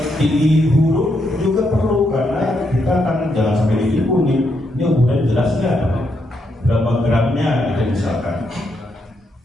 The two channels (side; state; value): both; normal; correlation 0.79